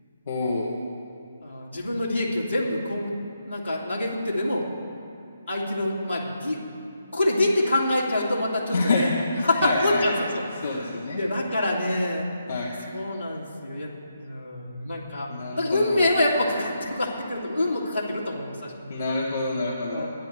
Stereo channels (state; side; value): inverted; both; correlation -0.82